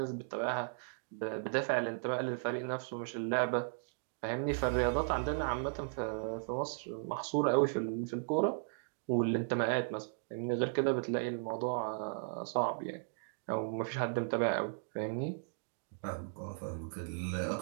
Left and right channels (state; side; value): silent; left; digital silence